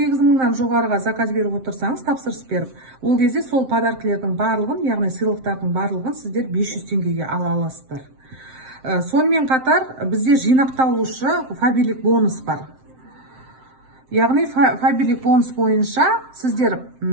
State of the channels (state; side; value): late; left; 7.7 ms